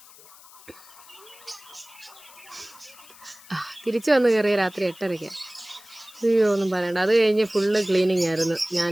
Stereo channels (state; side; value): noise; left; hiss, 22 dB below the sound